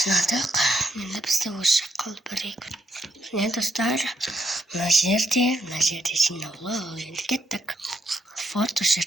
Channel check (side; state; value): both; normal; correlation 0.78